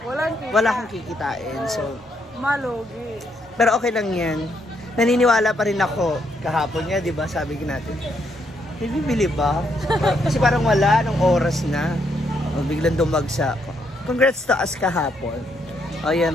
wala kang kikitain. So, malugi. Pero okay lang yan. Naniniwala pa rin ako. Kahapon niya, di ba? Sabi natin. Bibili ba? Kasi parang wala. Nung oras na. Biglang dumagsa. Congrats to us kahapon. O yan,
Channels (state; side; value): normal; both; correlation 0.75